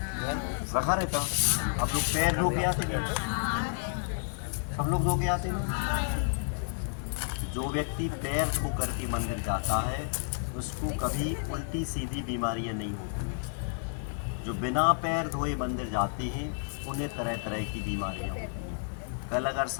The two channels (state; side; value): silent; right; digital silence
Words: रखा रहता। आप लोग पैर धो के आते नहीं? सब लोग धो के आते ना। जो व्यक्ति पैर धो करके मंदिर जाता है उसको कभी उल्टी सीधी बीमारियां नहीं होती। जो बिना पैर धोए मंदिर जाते हैं उन्हें तरह तरह की बीमारियां होती हैं। कल अगर